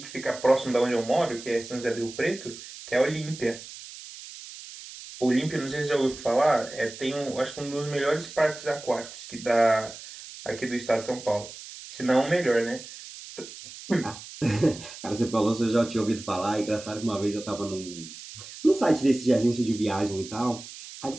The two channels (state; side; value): noise; right; hiss, 14 dB below the sound